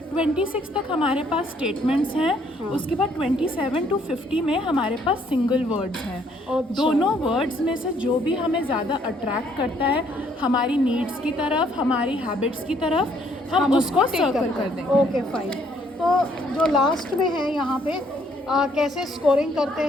26 तक हमारे पास स्टेटमेंट्स हैं। उसके बाद 27 to 50 में हमारे पास सिंगल वर्ड्स हैं। अच्छा। दोनों वर्ड्स में से जो भी हमें ज़्यादा अट्रैक्ट करता है हमारी नीड्स की तरफ, हमारी हैबिट्स की तरफ, हम उसको सर्कल कर दें। Okay, fine. तो जो लास्ट में है यहाँ पे कैसे स्कोरिंग करते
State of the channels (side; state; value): both; normal; correlation 0.66